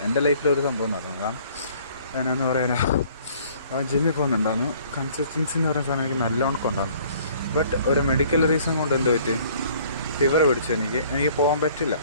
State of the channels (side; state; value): both; inverted; correlation -0.56